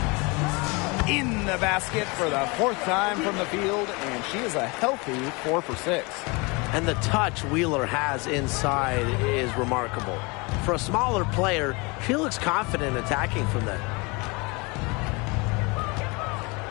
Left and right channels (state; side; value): quieter; right; 27.8 dB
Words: In the basket for the fourth time from the field, and she is a healthy 4 for 6. And the touch Wheeler has inside is remarkable. For a smaller player, she looks confident attacking from there.